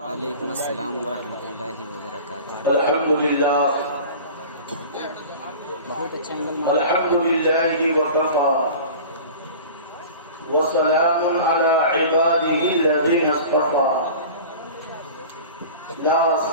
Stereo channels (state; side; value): inverted; both; correlation -0.38